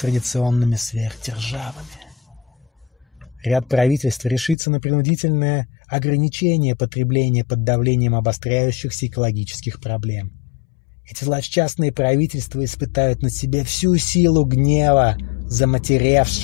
сверхдержавами. Ряд правительств решится на принудительное ограничение потребления под давлением обостряющихся экологических проблем. Эти злосчастные правительства испытают на себе всю силу гнева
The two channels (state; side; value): drops out; right; at 4.5 s